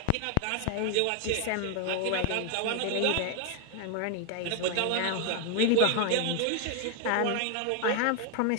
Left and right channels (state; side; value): different; both; correlation 0.00